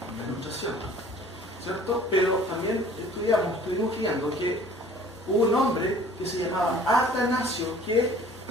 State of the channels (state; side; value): normal; both; correlation 0.50